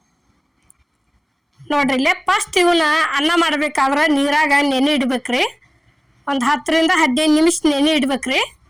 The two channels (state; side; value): identical; both; correlation 1.00